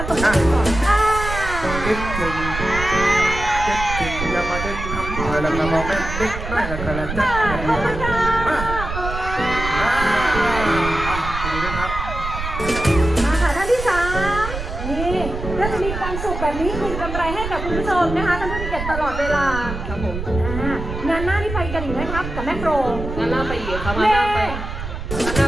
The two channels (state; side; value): noise; right; rumble, 6 dB below the sound